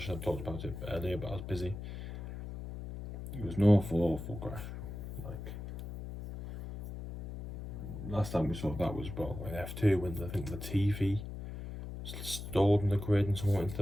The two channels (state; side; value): noise; left; hum, 9 dB below the sound